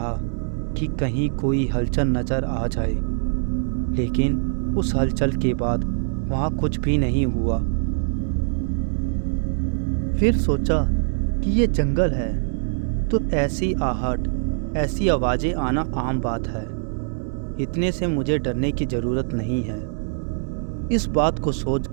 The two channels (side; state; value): left; silent; digital silence